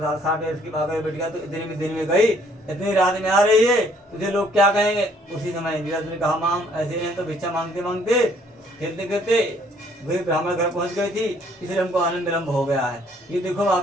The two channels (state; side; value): normal; both; correlation 0.63